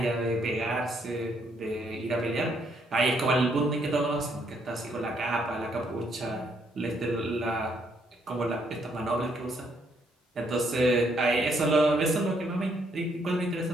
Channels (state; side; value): normal; both; correlation 0.71